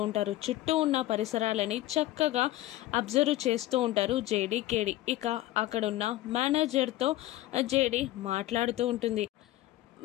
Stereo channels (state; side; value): quieter; right; 16.0 dB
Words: ఉంటారు. చుట్టూ ఉన్న పరిసరాలని చక్కగా అబ్జర్వ్ చేస్తూ ఉంటారు జేడి కేడి. ఇక అక్కడున్న మేనేజర్తో జేడి మాట్లాడుతూ ఉంటుంది.